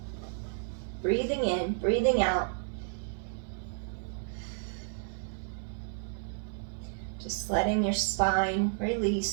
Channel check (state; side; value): silent; left; digital silence